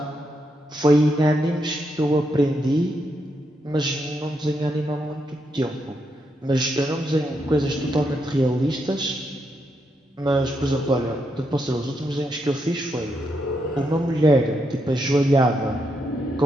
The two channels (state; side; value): normal; both; correlation 0.81